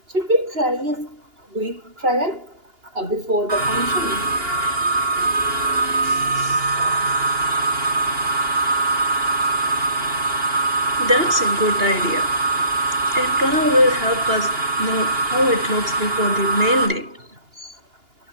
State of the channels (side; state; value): left; late; 2.8 ms